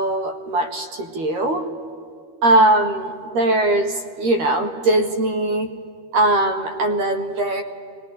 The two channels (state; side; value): late; left; 13 ms